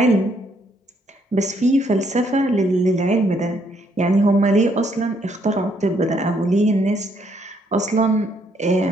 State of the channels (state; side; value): normal; both; correlation 0.70